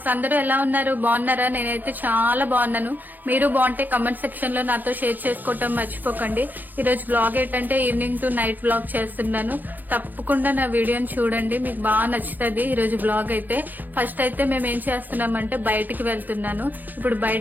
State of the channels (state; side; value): late; left; 0.085 ms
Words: అందరూ ఎలా ఉన్నారు? బాగున్నారా? నేనైతే చాలా బాగున్నాను. మీరు బాగుంటే కమెంట్ సెక్షన్ లో నాతో షేర్ చేసుకోవటం మర్చిపోకండి. ఈ రోజు బ్లాగ్ ఏంటంటే ఈవినింగ్ టు నైట్ బ్లాగ్ చేస్తున్నాను. తప్పకుండా నా వీడియోని చూడండి, మీకు బాగా నచ్చుతుంది. ఈ రోజు బ్లాగ్ అయితే ఫస్ట్ అయితే మేము ఏం చేస్తున్నామంటే బయటికి వెళ్తున్నాను. ఇప్పుడు